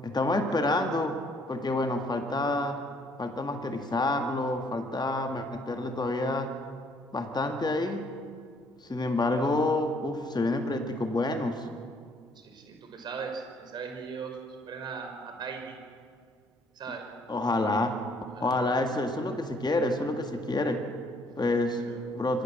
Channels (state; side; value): normal; both; correlation 0.64